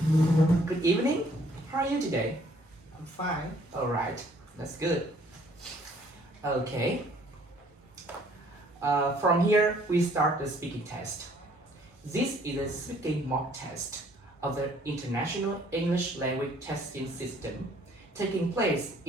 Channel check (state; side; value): normal; both; correlation 0.61